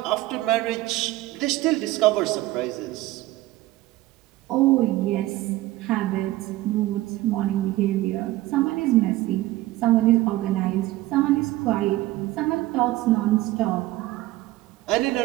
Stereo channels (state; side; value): quieter; left; 17.2 dB